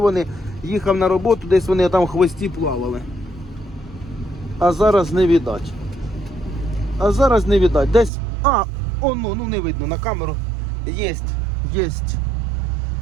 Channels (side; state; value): left; drops out; at 8.1 s